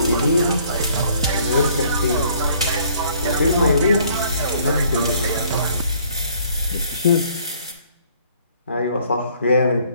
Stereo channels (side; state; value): both; inverted; correlation -0.60